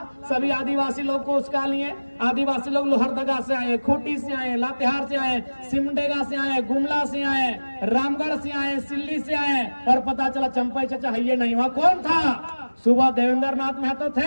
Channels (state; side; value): inverted; both; correlation -1.00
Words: सभी आदिवासी लोग को उसका लिए। आदिवासी लोग लोहरदगा से आए, खूंटी से आए, लातेहार से आए, सिमडेगा से आए, गुमला से आए, रामगढ़ से आए, सिल्ली से आए, और पता चला चंपई चाचा है ये नहीं हुआ। कौन था? सुबह देवेंद्र नाथ महतो